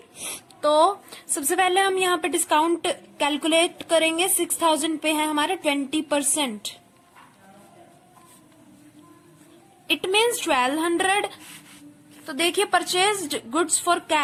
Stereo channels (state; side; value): identical; both; correlation 1.00